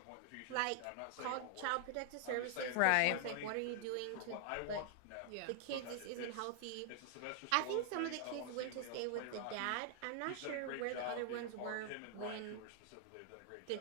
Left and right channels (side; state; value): both; different; correlation 0.00